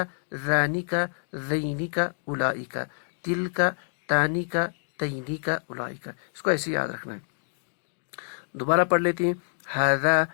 ذانک ذینک اولئک، تلک تانک تینک اولئک. اس کو ایسے یاد رکھنا ہے. دوبارہ پڑھ لیتے ہیں. ھذا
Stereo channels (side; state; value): right; silent; digital silence